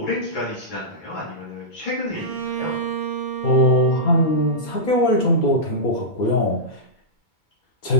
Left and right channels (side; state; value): right; late; 2.2 ms